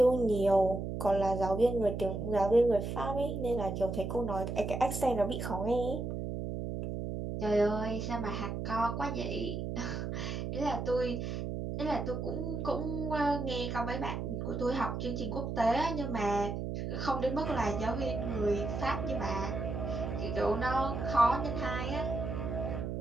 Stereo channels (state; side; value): noise; right; hum, 4 dB below the sound